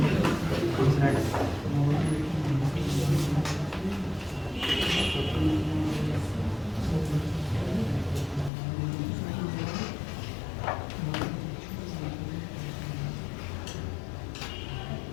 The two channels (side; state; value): right; drops out; at 8.5 s